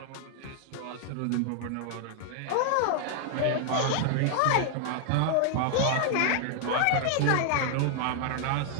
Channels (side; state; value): both; different; correlation 0.00